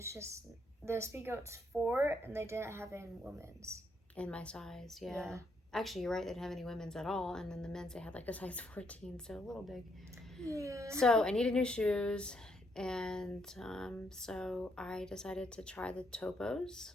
just the Speedgoat's 4 and they didn't have any women's. In my size, yeah. Actually, you're right, they didn't have any women's at all. And then the men's, they had like a size 14, so a little big. Yeah. So I needed new shoes. And so I decided to try the Topos.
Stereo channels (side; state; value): both; normal; correlation 0.74